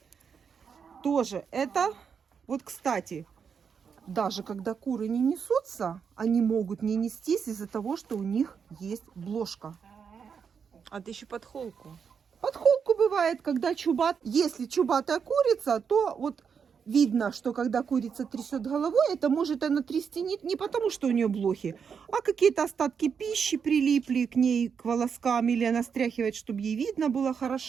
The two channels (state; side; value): quieter; left; 6.6 dB